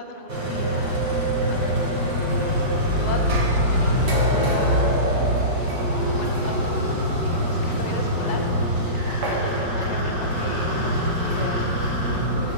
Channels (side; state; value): left; late; 5.7 ms